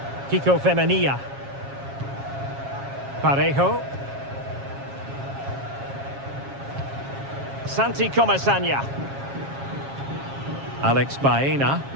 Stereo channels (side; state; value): left; late; 7.3 ms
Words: Kiko Femenia. Parejo. Santi Comesaña. Alex Baena.